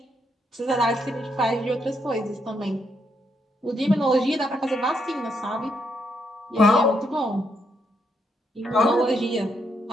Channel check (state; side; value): normal; both; correlation 0.77